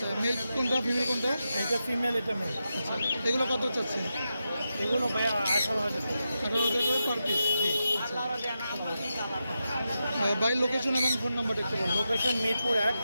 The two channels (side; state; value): both; inverted; correlation -0.89